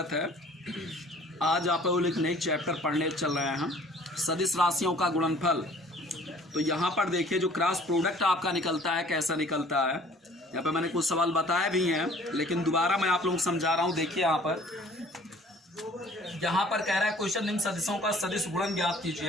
है। आज आप लोग एक नए चैप्टर पढ़ने चल रहे हैं हम, सदिश राशियों का गुणनफल। तो यहाँ पर देखिए जो क्रॉस प्रोडक्ट आपका निकलता है कैसा निकलता है। यहाँ पर मैंने कुछ सवाल बताए भी हैं, लेकिन दोबारा मैं आप लोगों को समझा रहा हूँ। देखिए यहाँ पर कह रहा है क्वेश्चन निम्न सदिशों का सदिश गुणन ज्ञात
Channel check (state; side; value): normal; both; correlation 0.53